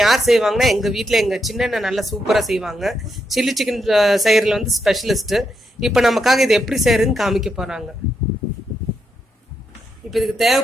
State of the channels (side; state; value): both; normal; correlation 0.81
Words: யார் செய்வாங்கன்னா எங்க வீட்டுல எங்க சின்ன நல்லா சூப்பரா செய்வாங்க. சில்லி சிக்கன் செய்யறதுல வந்து ஸ்பெஷலிஸ்ட். இப்ப நமக்காக இது எப்படி செய்யறதுன்னு காமிக்க போறாங்க. இப்ப இதுக்கு